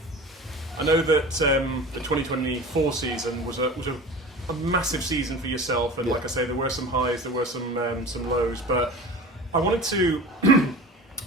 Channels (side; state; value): both; normal; correlation 0.36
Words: I know that the 2024 season was a massive season for yourself, and like I say, there were some highs, there were some lows. But I wanted to,